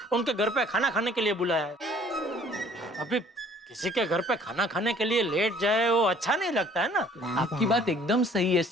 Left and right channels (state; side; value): normal; both; correlation 0.56